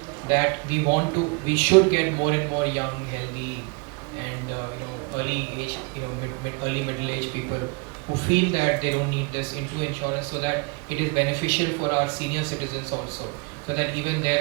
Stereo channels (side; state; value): left; quieter; 31.0 dB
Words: that we should get more and more young, healthy, and early age, early middle age people who feel that they don't need this into insurance, so that it is beneficial for our senior citizens also, so that even